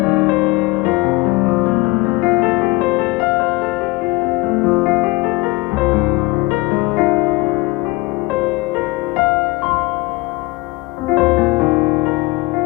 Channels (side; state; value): right; quieter; 22.2 dB